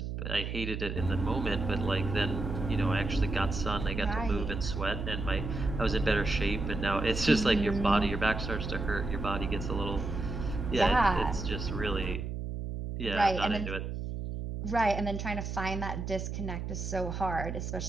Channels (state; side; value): noise; right; hum, 5 dB below the sound